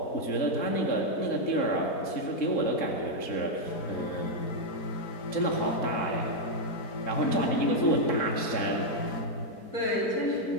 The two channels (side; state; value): right; late; 4.5 ms